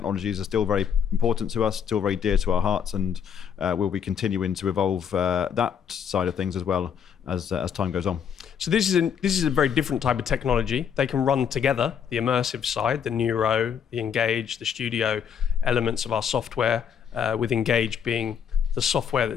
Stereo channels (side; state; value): right; quieter; 7.8 dB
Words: are still very important to us, still very dear to our hearts, and we'll be continuing to evolve that side of things as well as time goes on. So this is a very different type of technology. They can run together, the immersive side, the Neuro, the Engage, the Studio elements of our software, with Engage being the software